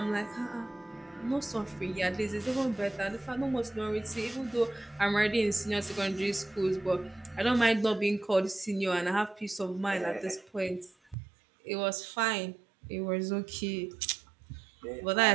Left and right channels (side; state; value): left; drops out; at 11.2 s